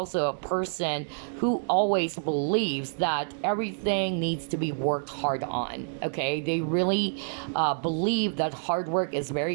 a person who always believes that everything needs to be worked hard on, okay? They really believe that hard work is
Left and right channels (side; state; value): left; silent; digital silence